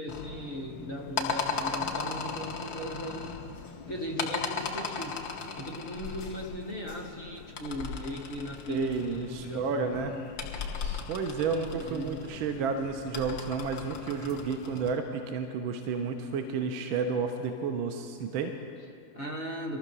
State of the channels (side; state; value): right; late; 5.8 ms